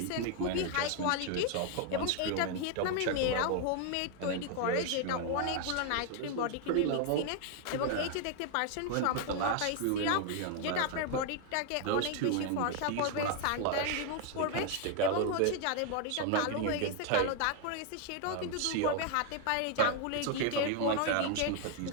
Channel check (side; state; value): both; different; correlation 0.00